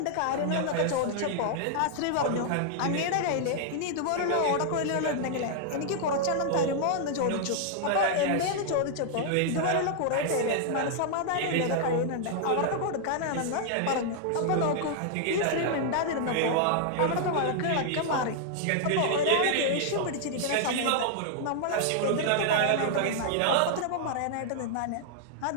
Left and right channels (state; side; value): different; both; correlation -0.01